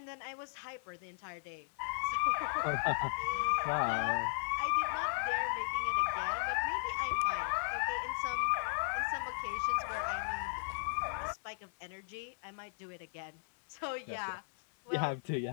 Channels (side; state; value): right; silent; 53 dB below the other